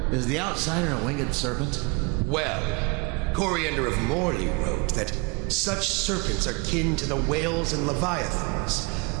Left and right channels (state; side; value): quieter; left; 28.5 dB